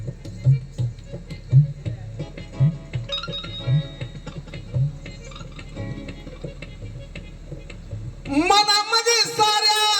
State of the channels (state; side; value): identical; both; correlation 1.00